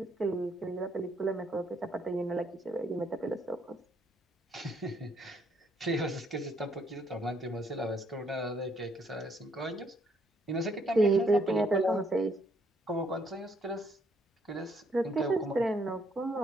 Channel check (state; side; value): normal; both; correlation 0.70